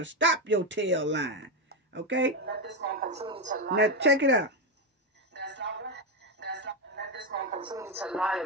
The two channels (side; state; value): both; normal; correlation 0.08